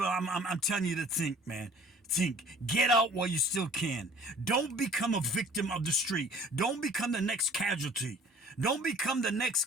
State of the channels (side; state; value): both; normal; correlation 0.50